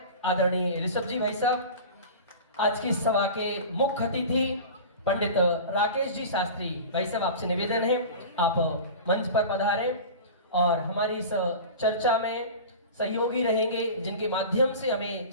आदरणीय ऋषभ जी भाई साहब, आज की सभा के मुख्य अतिथि पंडित राकेश जी शास्त्री भाई साहब, आपसे निवेदन है आप मंच पर पधारें और हमारी इस चर्चा में सहयोगी रहेंगे, जिनके माध्यम से हमें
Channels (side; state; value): both; inverted; correlation -0.34